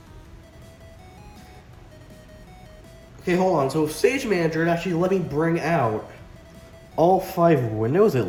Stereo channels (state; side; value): identical; both; correlation 1.00